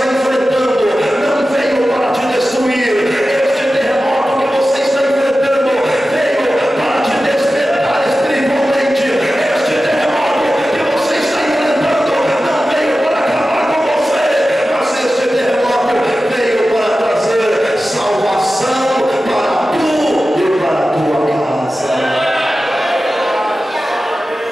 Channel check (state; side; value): normal; both; correlation 0.94